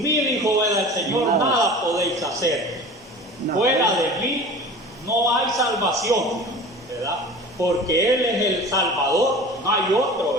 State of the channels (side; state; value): both; normal; correlation 0.38